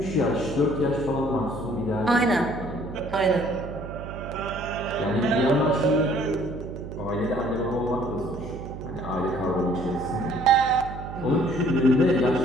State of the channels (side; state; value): right; noise; hum, 10 dB below the sound